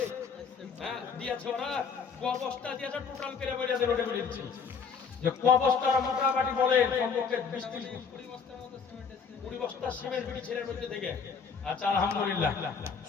হ্যাঁ দিয়েছে ওরা অবস্থা দিয়েছে টোটাল করে বলে আছে রোডে বলে দিচ্ছি যে অবস্থাটা মোটামুটি বলে কমপক্ষে 20 বস্তা সিমেন্ট বিড়ি ছেলের মধ্যে থেকে আচ্ছা আলহামদুলিল্লাহ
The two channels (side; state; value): right; quieter; 5.9 dB